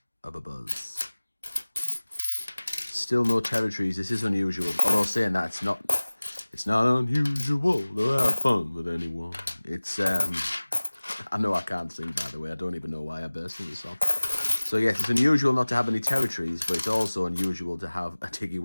of a buzz. Still no territories. This is unusual. Although saying that, it's not unusual to have fun with anyone. It's I know I can't sing, by the way. I don't even know why I burst into the song. So yes, it's unusual not to have any territories, but it's also unusual to have a Tiggy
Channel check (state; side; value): inverted; both; correlation -1.00